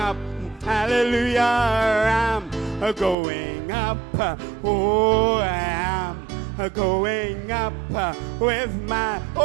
Hallelujah, I'm going up. Oh, I'm going up with my,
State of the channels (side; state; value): left; drops out; at 3.2 s